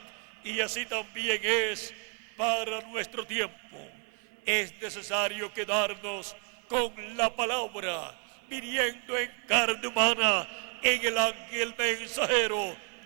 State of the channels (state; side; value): quieter; left; 39.9 dB